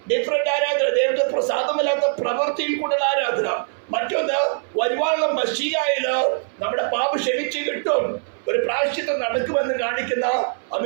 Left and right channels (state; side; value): silent; left; 59 dB below the other